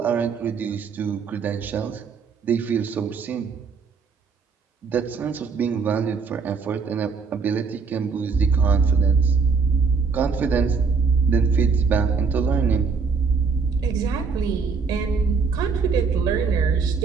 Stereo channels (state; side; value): quieter; left; 5.2 dB